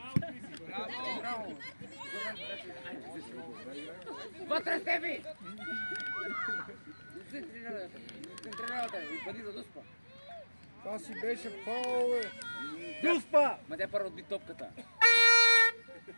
Браво! Вътре, Стефи! Центриралата и пади за Дуспа. Това си беше фаул, бе. Дуспа! Ма тя първо отби топката.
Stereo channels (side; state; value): both; inverted; correlation -1.00